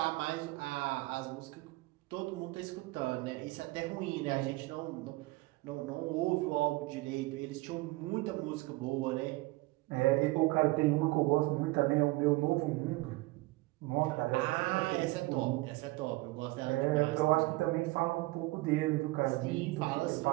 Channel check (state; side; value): quieter; left; 21.5 dB